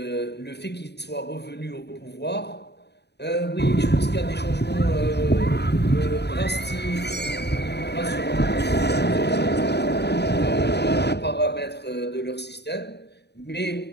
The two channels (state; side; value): late; right; 0.49 ms